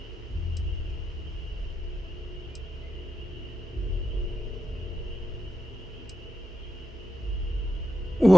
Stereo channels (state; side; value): normal; both; correlation 0.87